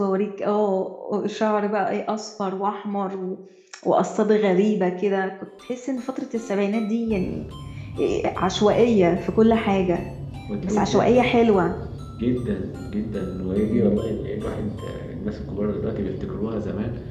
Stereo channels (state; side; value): identical; both; correlation 1.00